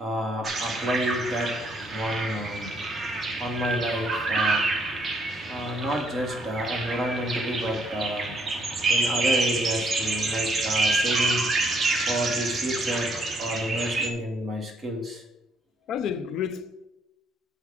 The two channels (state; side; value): normal; both; correlation 0.69